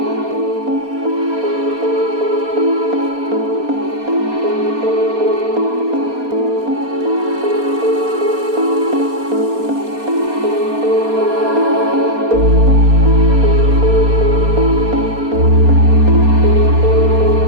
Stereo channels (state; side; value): late; left; 4.3 ms